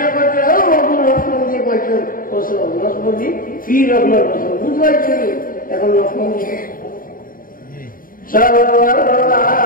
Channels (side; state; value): right; late; 0.41 ms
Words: বলছে ও নকমদি বলছে ওসো নকমদি ফি রকমের ওসো বুঝাইছো এখন নকমদি সাল্লাল্লাহু